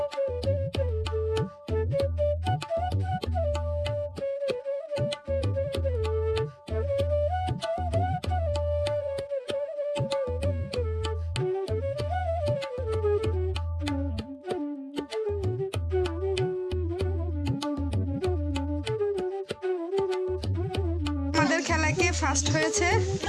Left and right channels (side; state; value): both; identical; correlation 1.00